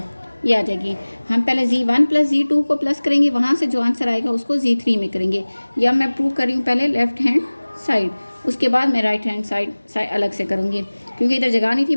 ये आ जाएगी। हम पहले Z1 + Z2 को प्लस करेंगे, वहाँ से जो आंसर आएगा उसको Z3 में करेंगे। या मैं प्रूव कर रही हूँ पहले लेफ्ट हैंड साइड, उसके बाद मैं राइट हैंड साइड अलग से करूँगी, क्योंकि इधर जगह नहीं थी,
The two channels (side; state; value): both; inverted; correlation -1.00